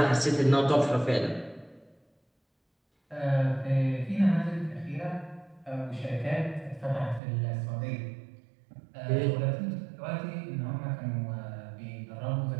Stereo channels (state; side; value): drops out; left; at 7.2 s